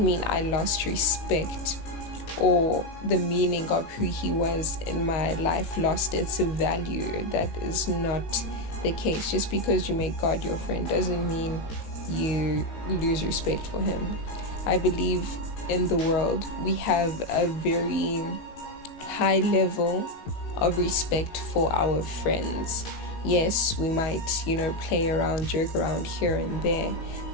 mean I lost respect or the meaning of who he was in my life lost its value. That is not the case. Just because you make God your friend doesn't mean you lose respect for him. I believe in the world, we have a very high level of respect for our friends. Yes, we might, play around, joke around here and there,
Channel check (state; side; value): late; right; 19 ms